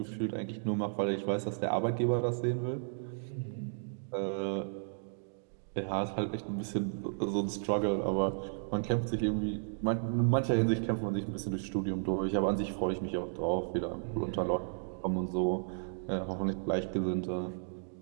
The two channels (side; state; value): left; silent; digital silence